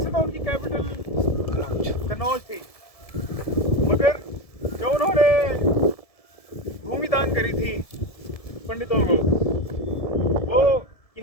तो उनकी कैपिटल कनौज थी, मगर जो उन्होंने भूमि दान करी थी पंडितों को, वो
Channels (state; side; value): late; right; 1.7 ms